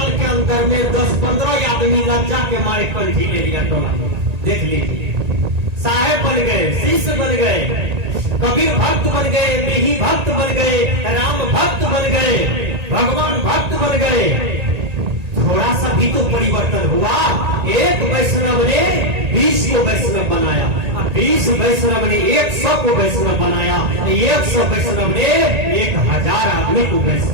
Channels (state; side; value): late; left; 1.9 ms